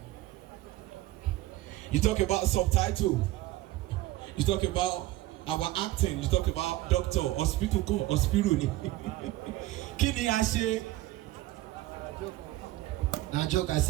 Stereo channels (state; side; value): quieter; left; 17.0 dB